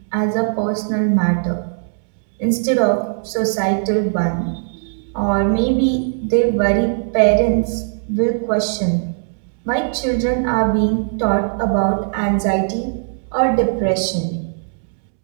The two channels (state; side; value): silent; left; digital silence